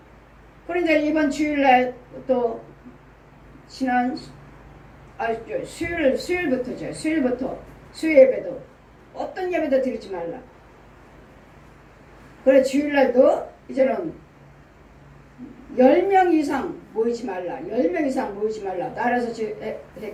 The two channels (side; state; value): both; identical; correlation 1.00